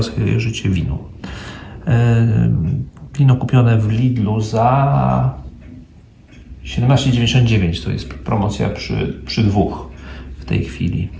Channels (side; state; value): both; identical; correlation 1.00